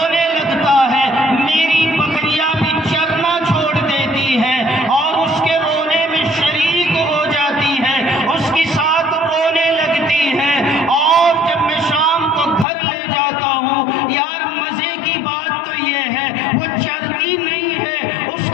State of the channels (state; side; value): drops out; right; at 12.7 s